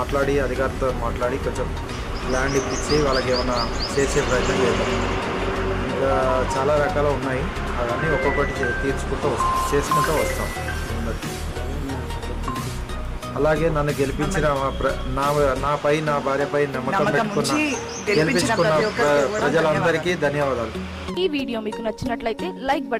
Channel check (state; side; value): identical; both; correlation 1.00